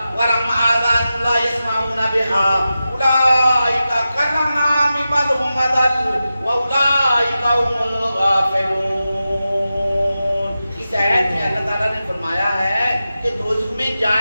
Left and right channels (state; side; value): inverted; both; correlation -0.92